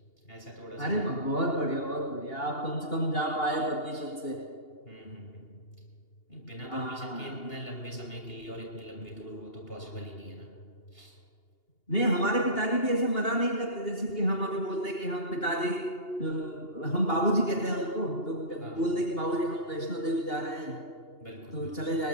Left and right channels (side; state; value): right; late; 2.8 ms